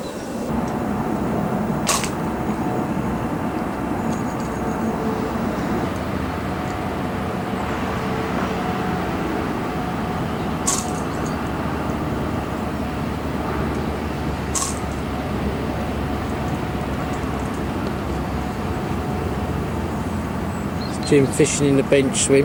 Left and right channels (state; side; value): identical; both; correlation 1.00